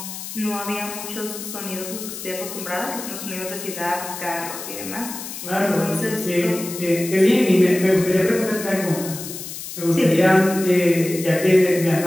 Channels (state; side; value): noise; left; hiss, 9 dB below the sound